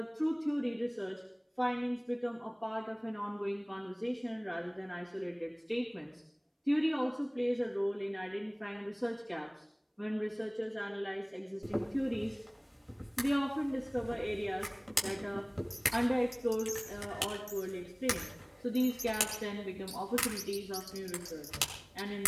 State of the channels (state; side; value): identical; both; correlation 1.00